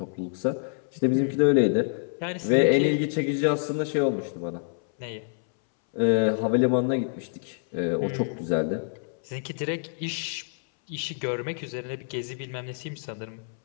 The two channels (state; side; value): silent; right; 60 dB below the other